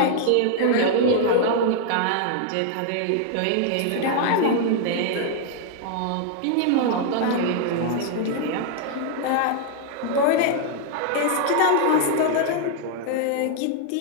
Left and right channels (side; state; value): both; different; correlation 0.00